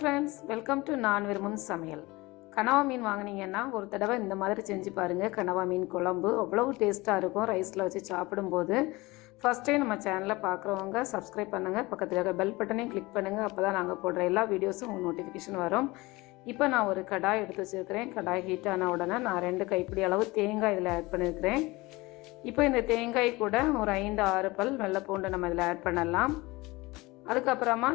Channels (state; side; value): quieter; right; 22.1 dB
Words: welcome to நான் விரும்பும் சமையல். கனவா மீன் வாங்கினீங்கன்னா ஒரு தடவை இந்த மாதிரி செஞ்சு பாருங்கள். கனவா மீன் குழம்பு அவ்வளவு டேஸ்ட்டாக இருக்கும் ரைஸில் வச்சு சாப்பிடும்போது. ஃபஸ்ட் டைம் நம்ம சேனலில் பார்க்குறவங்க சப்ஸ்கிரைப் பண்ணுங்கள், பக்கத்தில் இருக்க பெல் பட்டனையும் கிளிக் பண்ணுங்கள். அப்போ தான் நாங்கள் போடுற எல்லா வீடியோஸும் உங்களுக்கு நோட்டிஃபிகேஷன் வரும். இப்போ நான் ஒரு கடாய் எடுத்து வச்சுருக்கிறேன். கடாய் ஹீட் ஆன உடனே நான் 2 கைப்பிடி அளவு தேங்காய் இதில் ஆட் பண்ணியிருக்கிறேன். இப்போ இந்த தேங்காய் கூட ஒரு 5-6 பல் வெள்ளை பூண்டு நம்ம இதில் ஆட் பண்ணலாம். அதுக்கப்புறமா